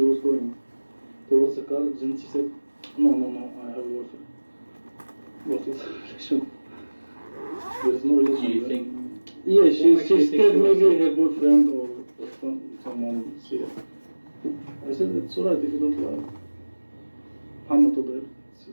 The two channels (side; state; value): both; inverted; correlation -1.00